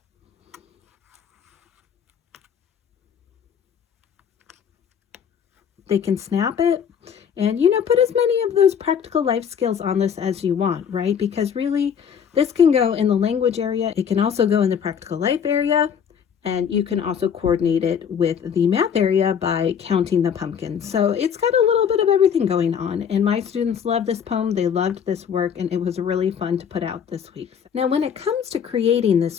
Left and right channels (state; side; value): quieter; right; 7.7 dB